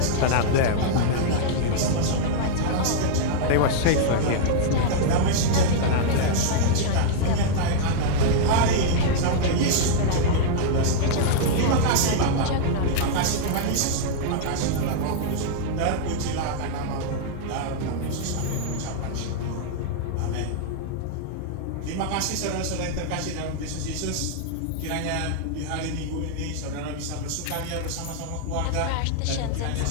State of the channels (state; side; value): different; both; correlation -0.01